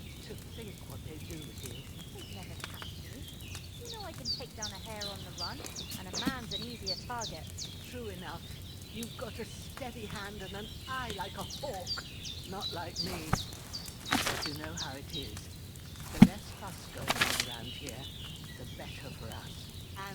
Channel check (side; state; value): both; identical; correlation 1.00